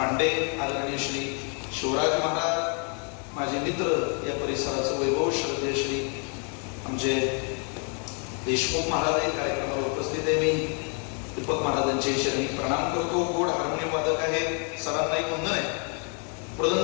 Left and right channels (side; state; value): right; quieter; 39.1 dB